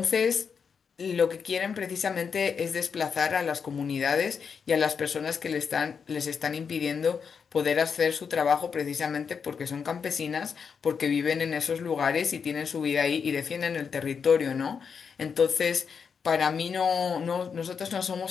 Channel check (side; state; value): right; quieter; 6.3 dB